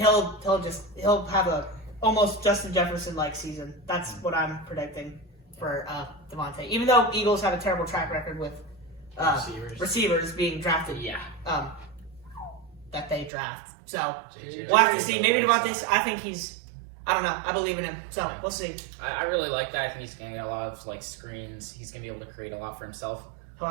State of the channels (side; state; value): left; drops out; at 13.3 s